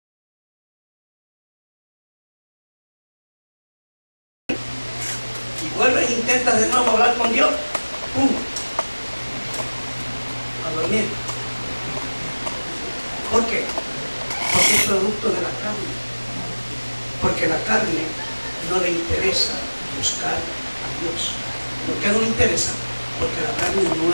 Y vuelves e intentas de nuevo hablar con Dios. ¡Pum! A dormir. ¿Por qué? Porque es producto de la carne. Porque la carne no le interesa buscar a Dios. ¿Por qué no le interesa? Porque la carne no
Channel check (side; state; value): both; inverted; correlation -1.00